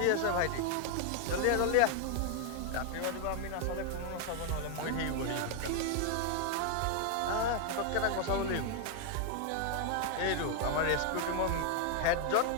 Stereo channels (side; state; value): both; different; correlation 0.00